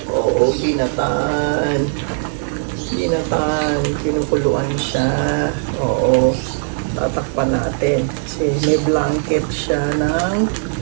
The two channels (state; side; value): silent; left; 67 dB below the other